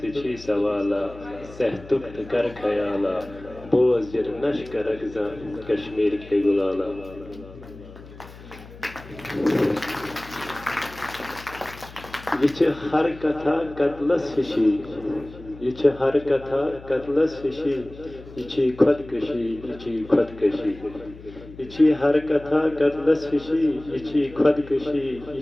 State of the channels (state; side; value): noise; left; hum, 18 dB below the sound